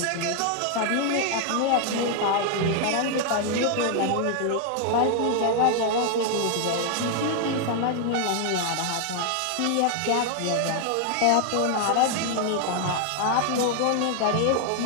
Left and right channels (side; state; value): both; different; correlation 0.00